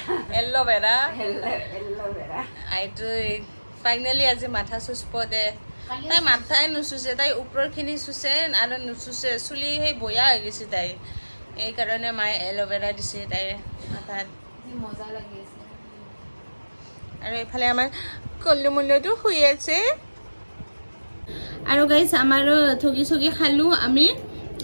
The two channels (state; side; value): inverted; both; correlation -1.00